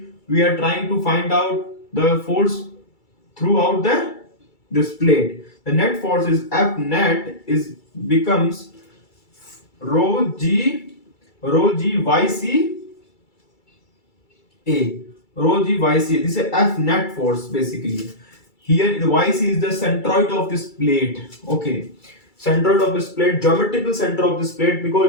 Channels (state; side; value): late; right; 2.3 ms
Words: we are trying to find out the force throughout this plate. The net force is F net is becomes rho g yc A, rho g yc. This is F net force basically. Here the yc is the centroid of this plate. Okay, centroid of this plate, geometrical center of this plate,